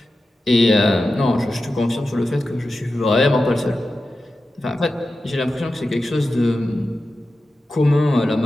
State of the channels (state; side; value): normal; both; correlation 0.92